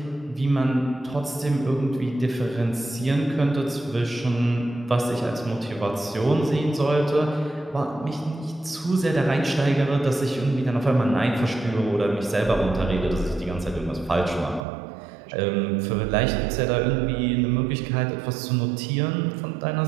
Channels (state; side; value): drops out; left; at 14.6 s